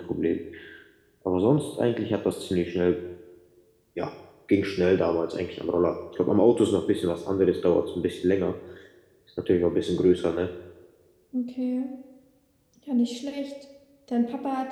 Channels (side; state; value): both; identical; correlation 1.00